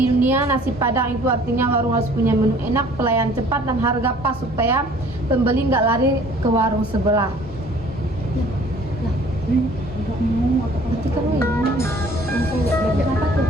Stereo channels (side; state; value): both; normal; correlation 0.53